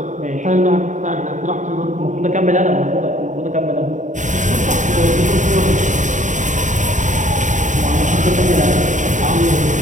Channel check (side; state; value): left; late; 0.36 ms